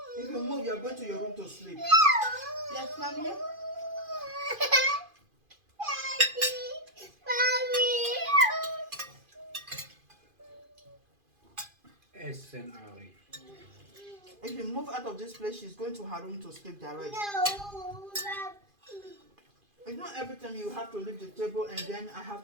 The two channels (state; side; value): late; left; 2.5 ms